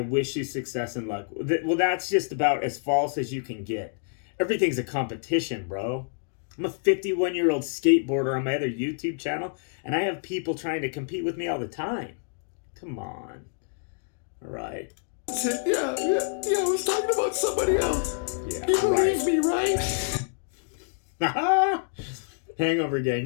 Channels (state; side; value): silent; right; digital silence